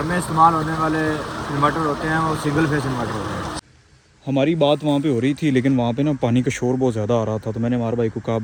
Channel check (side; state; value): both; identical; correlation 1.00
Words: में इस्तेमाल होने वाले इन्वर्टर होते हैं वो सिंगल फेस इन्वर्टर होते हैं। हमारी बात वहाँ पे हो रही थी, लेकिन वहाँ पे ना पानी का शोर बहुत ज़्यादा आ रहा था, तो मैंने अमार भाई को कहा